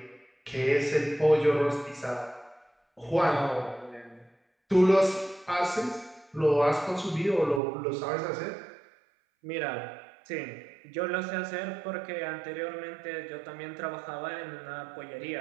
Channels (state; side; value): drops out; left; at 7.6 s